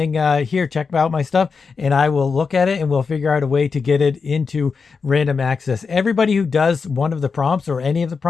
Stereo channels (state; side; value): quieter; right; 5.2 dB